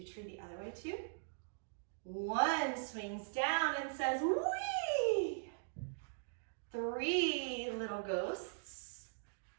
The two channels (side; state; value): left; silent; digital silence